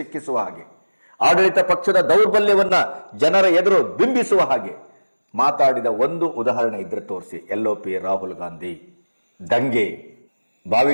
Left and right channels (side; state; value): both; inverted; correlation -1.00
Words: ಹಾಗೆ, ಆಡಳಿತ ಪಕ್ಷದ ದೌರ್ಬಲ್ಯವನ್ನ ಜನರ ಎದುರು ಬಿಂಬಿಸುವ ಹಾಗೆ ಮಾತಾಡಿದ ಒಂದು ಉದಾಹರಣೆ ಇದ್ರೆ ತೋರಿಸಿ. LOP ರಾಹುಲ್ ಗಾಂಧಿ ದಂಗೆ,